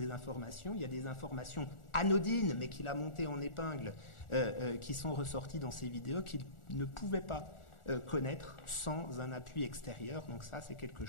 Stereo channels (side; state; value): right; late; 1.4 ms